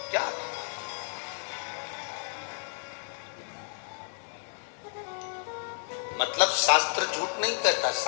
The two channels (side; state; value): right; silent; 57 dB below the other